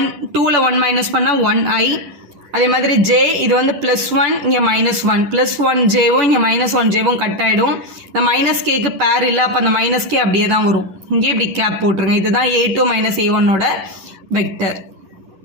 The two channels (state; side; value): late; left; 10 ms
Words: 2ல் 1 மைனஸ் பண்ணால் 1i அதே மாதிரி j இது வந்து +1 இங்கே -1 +1jவும் இங்கே -1jவும் கட் ஆகிடும் இந்த -kக்கு பேர் இல்லை அப்போ அந்த -k அப்படியே தான் வரும் இங்கே இப்படி கேப் போட்டுருங்க இதுதான் A2 - A1ஓட வெக்டர்